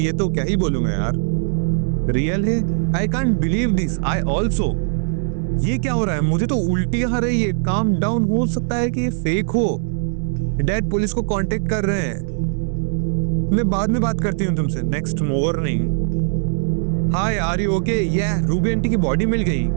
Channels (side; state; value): left; silent; digital silence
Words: ये तो क्या ही बोलूं मैं यार, रियल है। I can't believe this, I also. ये क्या हो रहा है? मुझे तो उल्टी आ रही है। काम डाउन, हो सकता है कि ये फेक हो। डैड पुलिस को कांटेक्ट कर रहे हैं। मैं बाद में बात करती हूँ तुमसे। Next morning. Hi are you okay? ये रूबी आंटी की बॉडी मिल गई।